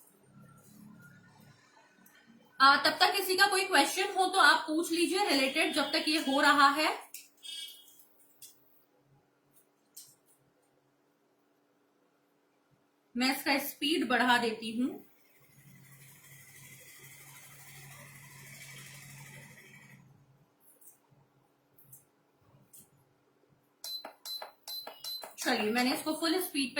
तब तक किसी का कोई क्वेश्चन हो तो आप पूछ लीजिए रिलेटेड, जब तक ये हो रहा है। मैं इसका स्पीड बढ़ा देती हूं। चलिए, मैंने इसको फुल स्पीड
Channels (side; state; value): both; identical; correlation 1.00